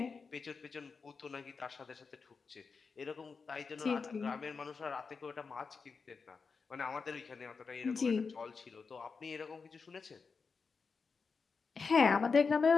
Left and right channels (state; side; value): quieter; right; 5.0 dB